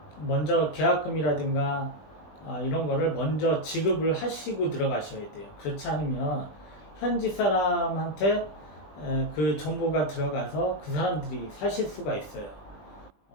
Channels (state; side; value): late; right; 20 ms